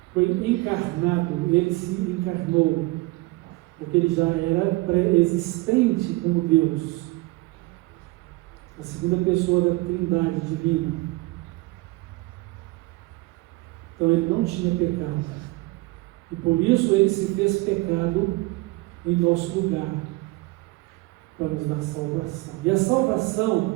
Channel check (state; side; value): quieter; left; 21.9 dB